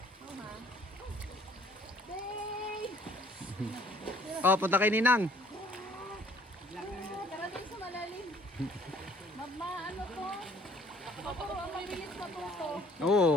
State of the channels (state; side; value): normal; both; correlation 0.58